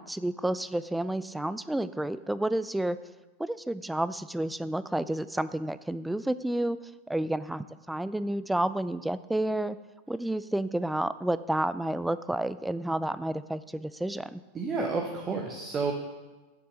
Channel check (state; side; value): normal; both; correlation 0.91